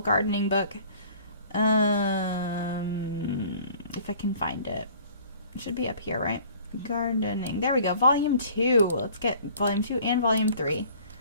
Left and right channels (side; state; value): both; inverted; correlation -0.51